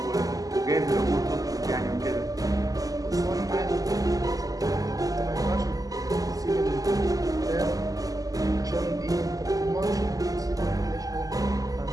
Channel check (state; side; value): late; left; 0.17 ms